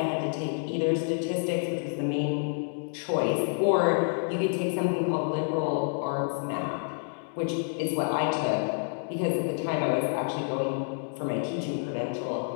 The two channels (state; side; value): silent; right; digital silence